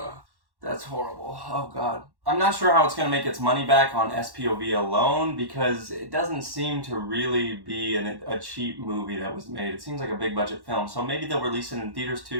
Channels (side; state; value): left; late; 1.1 ms